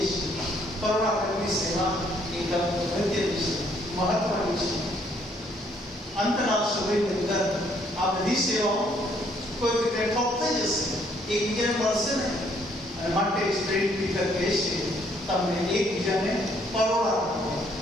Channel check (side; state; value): both; normal; correlation 0.67